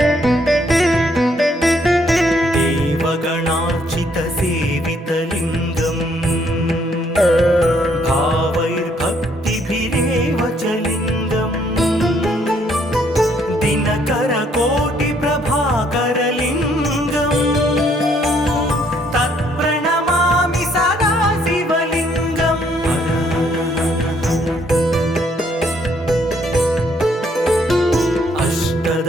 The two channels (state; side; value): normal; both; correlation 0.68